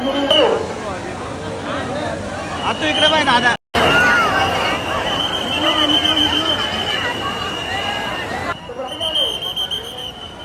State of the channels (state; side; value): identical; both; correlation 1.00